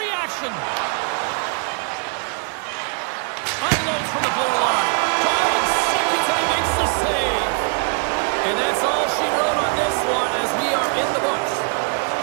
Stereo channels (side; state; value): left; quieter; 38.4 dB